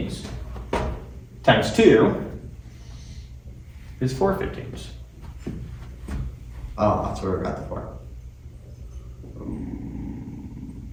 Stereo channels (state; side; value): identical; both; correlation 1.00